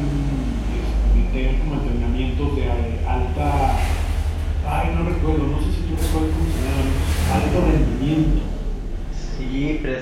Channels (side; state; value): both; identical; correlation 1.00